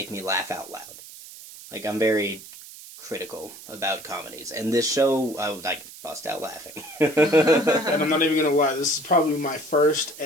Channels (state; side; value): noise; right; hiss, 16 dB below the sound